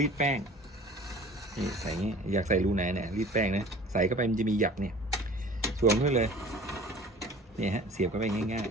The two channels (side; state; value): both; normal; correlation 0.45